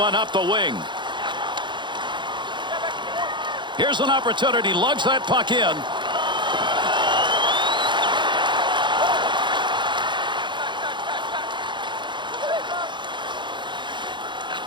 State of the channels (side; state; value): left; late; 0.23 ms